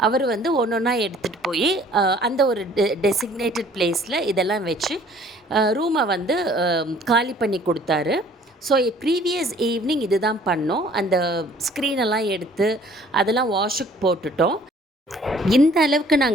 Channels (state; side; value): normal; both; correlation 0.55